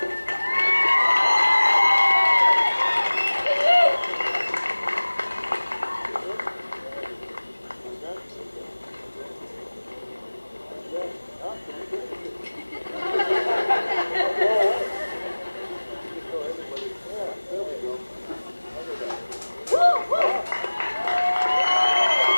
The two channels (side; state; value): both; inverted; correlation -1.00